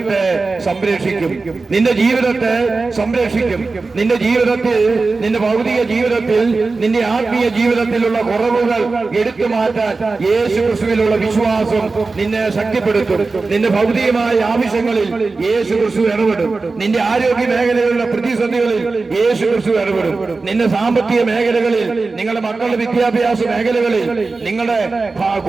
സംരക്ഷിക്കും, നിന്റെ ജീവിതത്തെ സംരക്ഷിക്കും. നിന്റെ ജീവിതത്തിൽ, നിന്റെ ഭൗതിക ജീവിതത്തിൽ, നിന്റെ ആത്മീയ ജീവിതത്തിലുള്ള കുറവുകൾ എടുത്തു മാറ്റാൻ യേശു ക്രിസ്തുവിലുള്ള വിശ്വാസം നിന്നെ ശക്തിപ്പെടുത്തും. നിന്റെ ഭൗതികമായ ആവശ്യങ്ങളിൽ യേശു ക്രിസ്തു ഇടപെടും. നിന്റെ ആരോഗ്യ മേഖലയിലുള്ള പ്രതിസന്ധികളിൽ യേശു ക്രിസ്തു ഇടപെടും. നിന്റെ സാമ്പത്തിക മേഖലകളിൽ, നിങ്ങളുടെ മക്കളുടെ വിദ്യാഭ്യാസ മേഖലകളിൽ, നിങ്ങളുടെ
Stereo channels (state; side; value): quieter; left; 3.9 dB